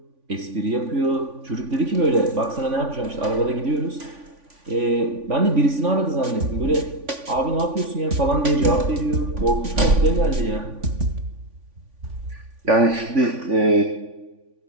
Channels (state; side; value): late; left; 3.5 ms